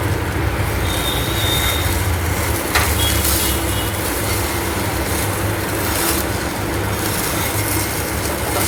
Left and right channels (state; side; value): identical; both; correlation 1.00